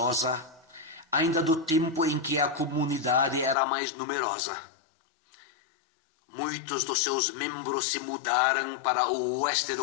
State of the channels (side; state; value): right; drops out; at 3.6 s